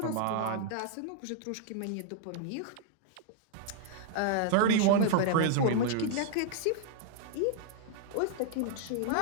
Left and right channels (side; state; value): both; different; correlation -0.01